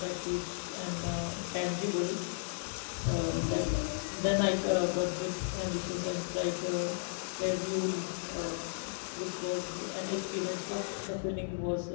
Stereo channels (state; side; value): silent; right; digital silence